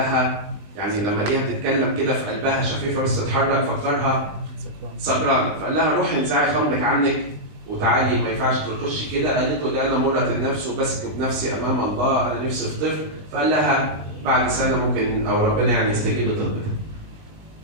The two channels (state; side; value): late; left; 20 ms